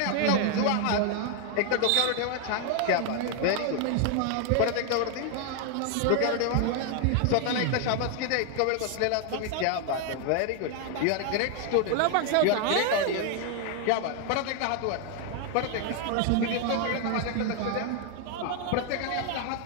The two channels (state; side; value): different; both; correlation 0.01